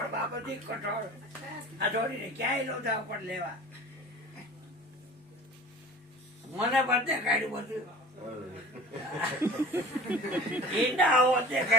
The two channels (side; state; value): both; normal; correlation 0.41